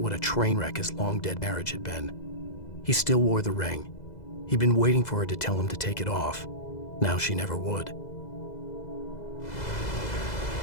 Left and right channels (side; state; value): right; late; 2.0 ms